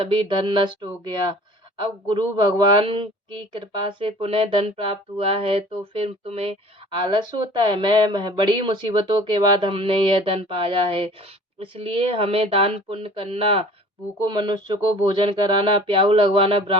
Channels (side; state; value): both; normal; correlation 0.46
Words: धन नष्ट हो गया। अब गुरु भगवान की कृपा से पुनः धन प्राप्त हुआ है तो फिर तुम्हें आलस होता है। मैं बड़ी मुसीबतों के बाद हमने यह धन पाया है, इसलिए हमें दान पुण्य करना, भूखों मनुष्य को भोजन कराना, प्याऊ लगवाना,